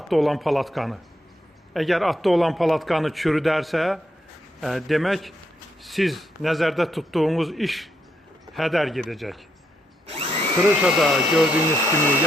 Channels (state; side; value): normal; both; correlation 0.78